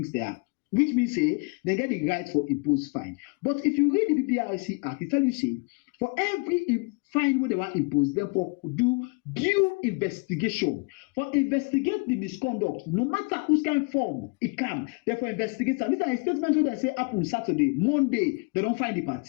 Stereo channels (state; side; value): quieter; right; 31.6 dB